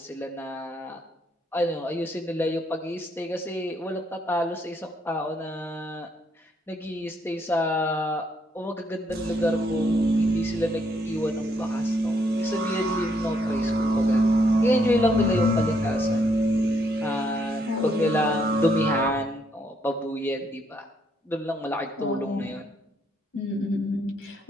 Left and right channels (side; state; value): both; normal; correlation 0.72